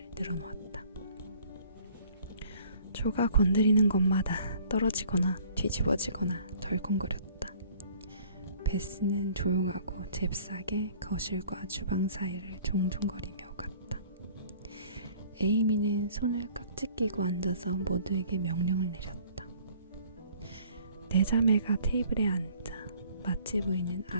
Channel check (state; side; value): inverted; both; correlation -0.54